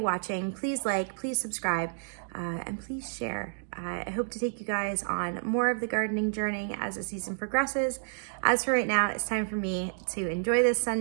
please like, please subscribe, and please share. I hope to take you guys on more of the gardening journey as the season progresses. As for right now, it's time for me to enjoy this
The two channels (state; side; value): silent; left; digital silence